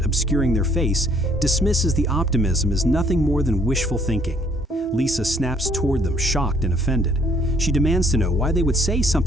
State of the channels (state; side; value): normal; both; correlation 0.64